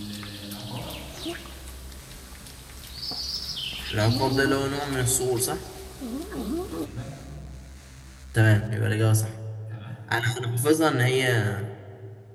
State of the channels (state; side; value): identical; both; correlation 1.00